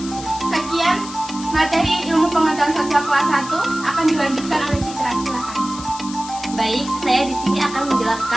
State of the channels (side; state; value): left; noise; hiss, 13 dB below the sound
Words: Sekian materi ilmu pengetahuan sosial kelas 1 akan dilanjutkan oleh Citra. Silakan. Baik, saya di sini akan